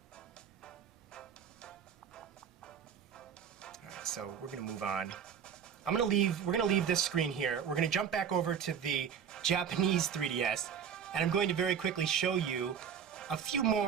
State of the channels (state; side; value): quieter; left; 7.7 dB